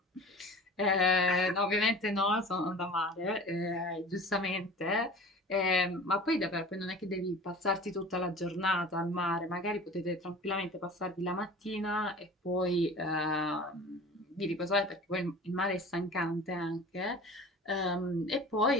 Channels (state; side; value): normal; both; correlation 0.40